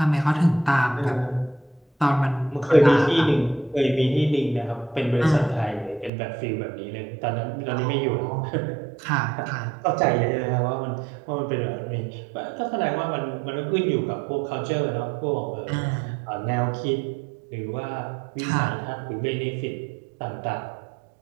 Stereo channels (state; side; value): drops out; left; at 6.1 s